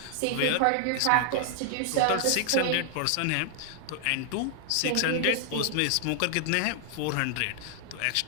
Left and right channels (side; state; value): both; different; correlation 0.00